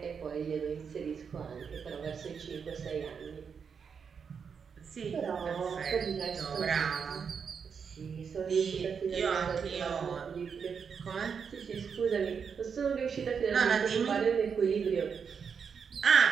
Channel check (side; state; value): left; quieter; 6.4 dB